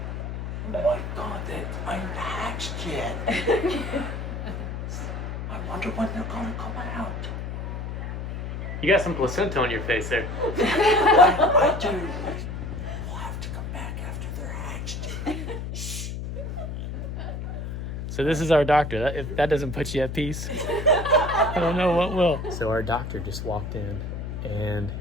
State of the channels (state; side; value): noise; left; hum, 5 dB below the sound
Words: Oh my God, they aren't hatched yet. I wonder when they're gonna come out. You got some placenta on your face there. I do. We'll have to come back after they're hatched. So this is our doctor. If that doesn't put you at peace, I don't know what will. So our doctor just walked in, and